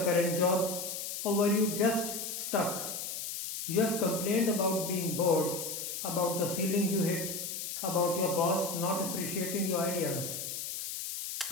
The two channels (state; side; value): noise; left; hiss, 5 dB below the sound